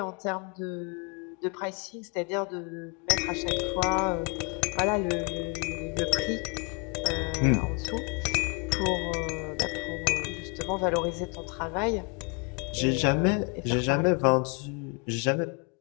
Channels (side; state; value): right; quieter; 34.5 dB